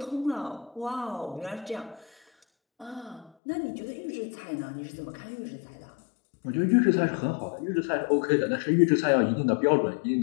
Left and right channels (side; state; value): right; drops out; at 3.3 s